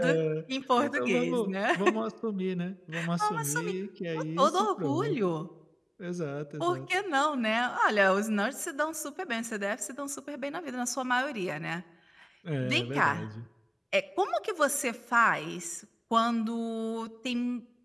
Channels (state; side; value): identical; both; correlation 1.00